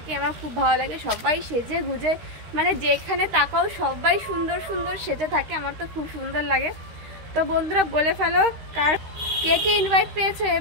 আমার খুব ভালো লাগে। সবাই সেজে গুজে, মানে যেখানে তাকাও সবাই সুন্দর সুন্দর সেজে থাকে, আমার তো খুব সুন্দর লাগে। তো বন্ধুরা বলে ফেলো, কার কে কে ইনভাইট পেয়েছো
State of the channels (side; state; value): left; late; 13 ms